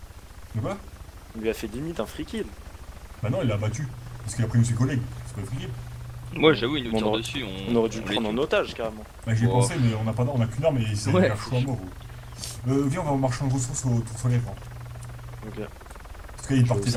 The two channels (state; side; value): identical; both; correlation 1.00